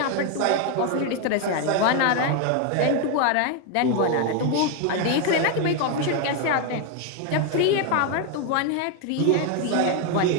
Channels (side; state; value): both; different; correlation 0.01